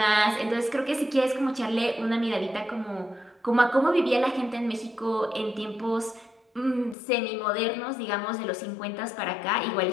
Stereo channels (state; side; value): drops out; right; at 7.0 s